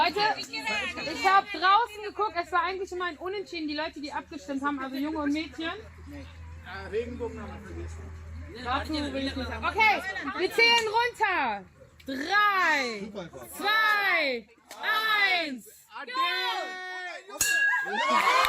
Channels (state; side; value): identical; both; correlation 1.00